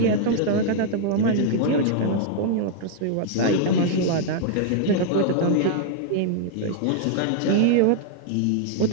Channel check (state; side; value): different; both; correlation -0.01